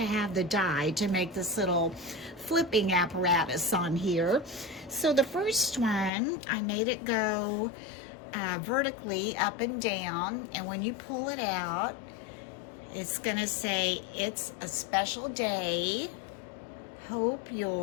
have the die to make this little flipping apparatus on here. So the first one, I made it go vertically up and down, and when you pull it out, it's going to say, "It's a special day. Hope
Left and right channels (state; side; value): drops out; right; at 6.1 s